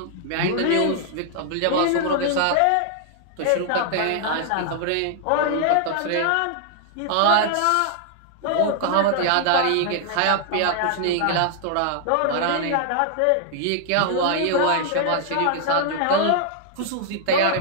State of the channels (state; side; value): different; both; correlation 0.00